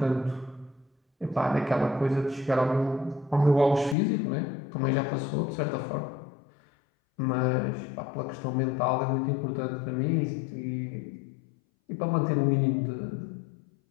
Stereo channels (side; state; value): right; drops out; at 4.0 s